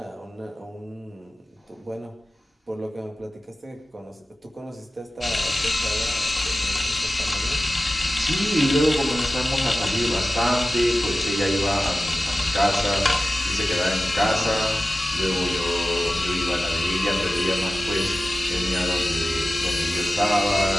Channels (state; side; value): normal; both; correlation 0.95